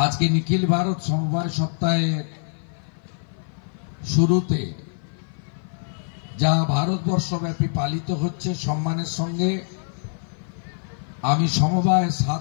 আজকে নিখিল ভারত সমবায় সপ্তাহের শুরুতে যা ভারতবর্ষব্যাপী পালিত হচ্ছে সম্মানের সঙ্গে আমি সমবায়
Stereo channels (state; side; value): silent; right; 56 dB below the other